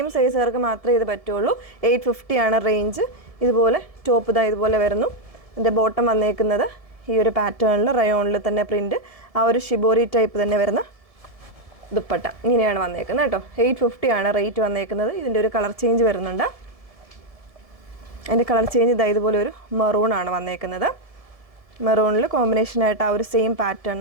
സൈസുകാർക്ക് മാത്രമേ ഇത് പറ്റുള്ളൂ. 850 ആണ് റേഞ്ച്. ഇതുപോലെ ടോപ്പ് ഇതുപോലെ വരുന്നു. ഇതിൻ്റെ ബോട്ടം വന്നേക്കുന്നത് ഈ ഒരു പാറ്റേണിൽ റയോണിൽ തന്നെ പ്രിൻറ്റ്, ആ ഒരു ഷിബോറി ടൈപ്പ് തന്നെ വരുന്ന ദുപ്പട്ട. ഇങ്ങനെയാണ് വന്നേക്കുന്നത് കേട്ടോ. 850 ആണ് റേറ്റ് വന്നേക്കുന്നത്. ഇതിൻ്റെ ഒരു കളർ ചേഞ്ച് വരുന്നുണ്ട്. അതിൻ്റെ കളർ ചേഞ്ച് ഇതുപോലെ ഒരു മെറൂൺ ആണ് വന്നേക്കുന്നത്. മെറൂണിൽ കോമ്പിനേഷനായിട്ട് ആ ഒരു സെയിം പാറ്റേൺ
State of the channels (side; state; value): left; late; 1.7 ms